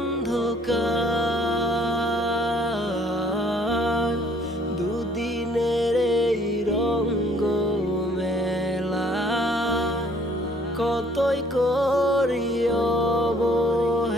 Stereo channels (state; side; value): normal; both; correlation 0.60